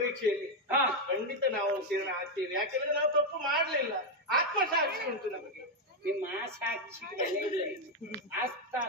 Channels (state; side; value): normal; both; correlation 0.03